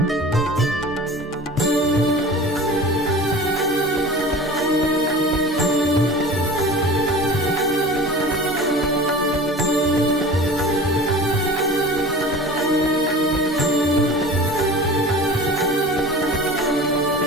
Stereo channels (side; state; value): both; normal; correlation 0.38